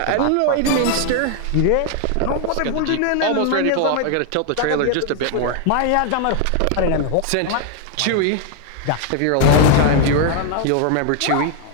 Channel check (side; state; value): both; different; correlation 0.00